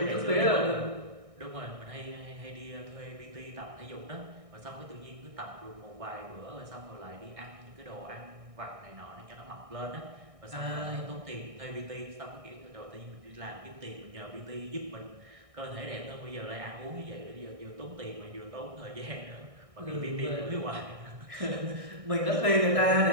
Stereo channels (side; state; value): left; late; 1.6 ms